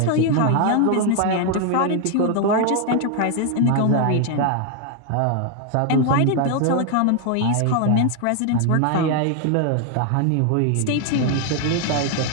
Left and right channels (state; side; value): different; both; correlation 0.00